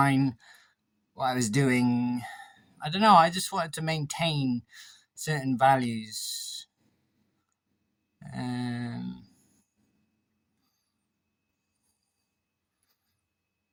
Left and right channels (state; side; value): identical; both; correlation 1.00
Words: what I was doing. I don't know. I just wanted to maintain certain values. Um,